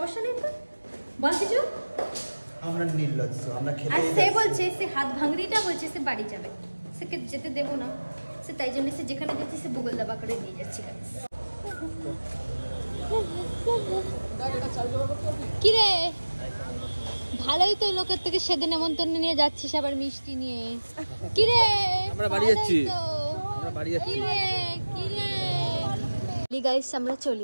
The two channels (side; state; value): both; inverted; correlation -1.00